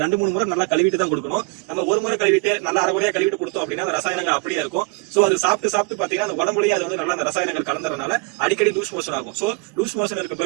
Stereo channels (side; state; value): left; quieter; 29.8 dB